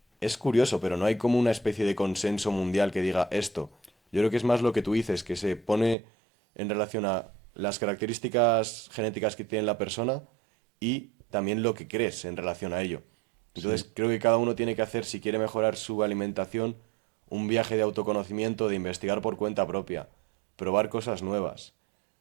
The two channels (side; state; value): left; drops out; at 6.0 s